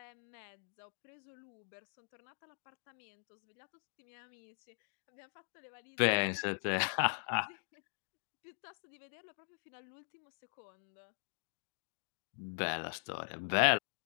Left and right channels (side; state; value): right; silent; digital silence